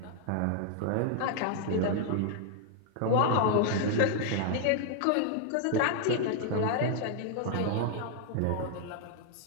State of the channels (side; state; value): both; different; correlation 0.00